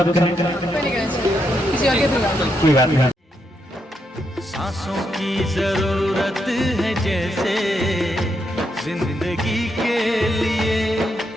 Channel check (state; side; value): normal; both; correlation 0.81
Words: कहें। किसी और के कोई बात नहीं। सांसों की जरूरत है जैसे जिंदगी के लिए,